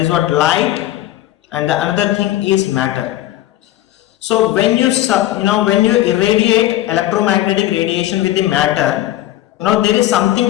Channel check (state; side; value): quieter; right; 14.6 dB